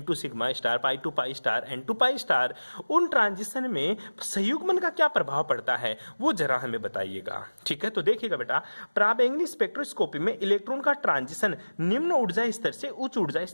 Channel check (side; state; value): both; inverted; correlation -1.00